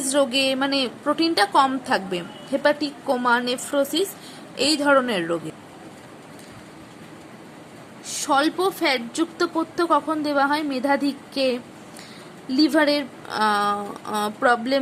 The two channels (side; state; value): both; identical; correlation 1.00